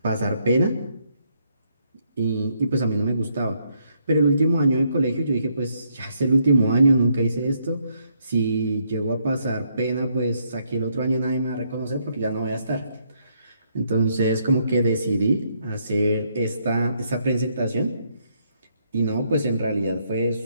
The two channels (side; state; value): both; inverted; correlation -0.73